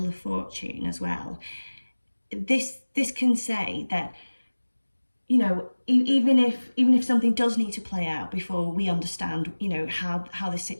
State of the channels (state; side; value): inverted; both; correlation -1.00